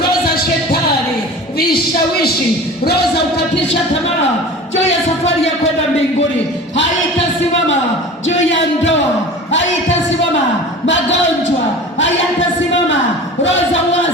za shetani, vishawishi, roho za kukatisha tamaa juu ya safari ya kwenda mbinguni haitasimama. Juu ya ndoa haitasimama. Magonjwa hayatasimama. Roho za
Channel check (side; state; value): both; normal; correlation 0.37